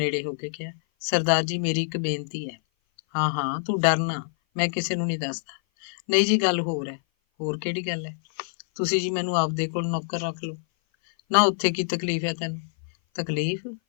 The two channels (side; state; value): right; silent; 56 dB below the other